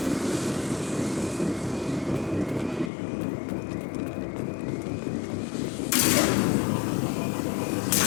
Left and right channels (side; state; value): right; drops out; at 2.9 s